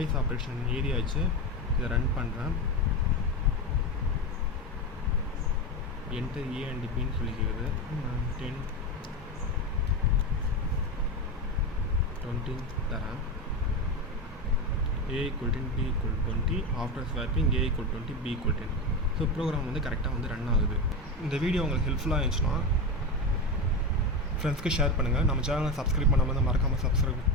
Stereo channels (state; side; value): normal; both; correlation 0.18